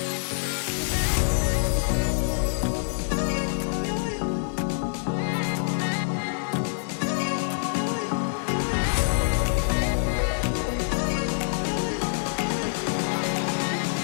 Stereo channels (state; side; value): silent; right; digital silence